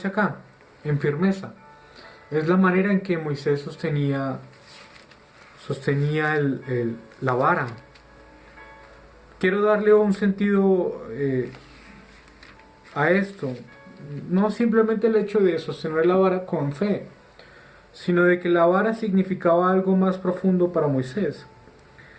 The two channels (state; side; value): identical; both; correlation 1.00